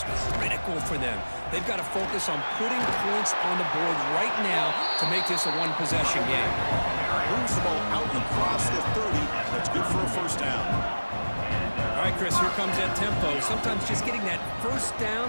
critical for them. They've got to focus on putting points on the board right now to make this a one-possession game. Moves the ball out across the 30. That's good for a first down. All right, Chris, here comes that tempo. Sometimes just getting that first down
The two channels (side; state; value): both; inverted; correlation -1.00